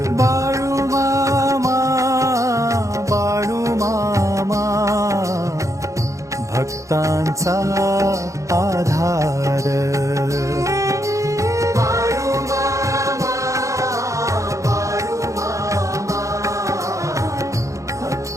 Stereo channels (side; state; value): left; late; 0.15 ms